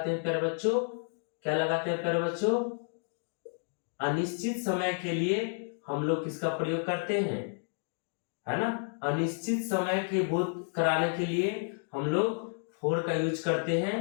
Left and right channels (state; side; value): silent; right; 57 dB below the other